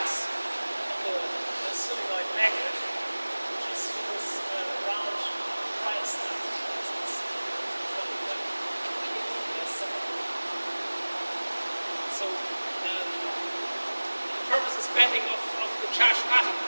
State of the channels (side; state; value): both; inverted; correlation -1.00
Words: of the solenoid magnet, which is this round wire stuff. So the purpose is bending of the charged